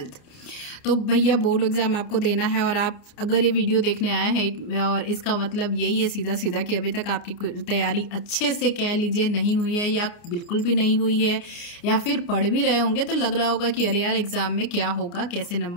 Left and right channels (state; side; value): late; right; 29 ms